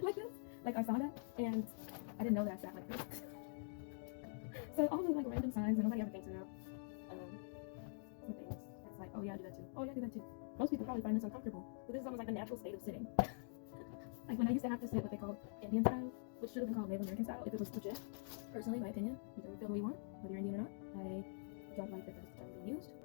like this. Like I saw that, and I didn't know that I sat like this. So all the like random signs that nobody ever thinks about. Things. It's like, oh yeah, I do that too. Oh yeah, I do that too. Most people probably find this uncomfortable, but this is almost like the natural state of sitting. Like when I used to have to sit what they call Indian style, which should have been called Native American style if it was legit. Personally, my opinion, you can feel the way you want, whether you're Indian or not. I don't like that that's the term being used.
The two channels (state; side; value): silent; right; digital silence